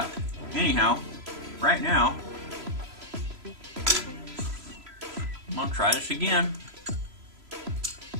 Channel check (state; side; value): late; left; 3.0 ms